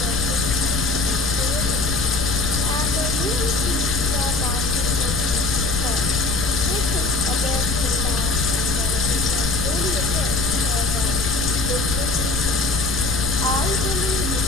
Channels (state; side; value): noise; left; rumble, 3 dB below the sound